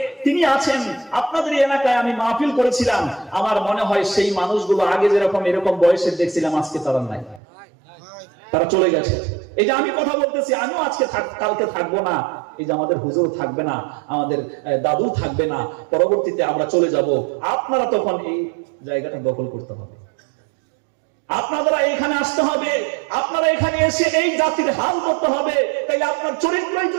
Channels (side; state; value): left; drops out; at 7.4 s